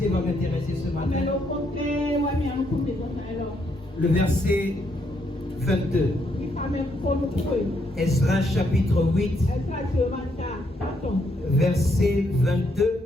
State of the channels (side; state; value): both; normal; correlation 0.75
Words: va m'intéresser ce matin. Le verset 22. Esdras chapitre 8. Verset 22.